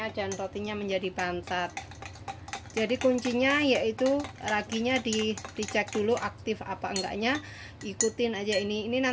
dan rotinya menjadi bantat. Jadi kuncinya yaitu raginya dicek dulu aktif apa enggaknya, ikutin aja ini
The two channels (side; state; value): both; identical; correlation 1.00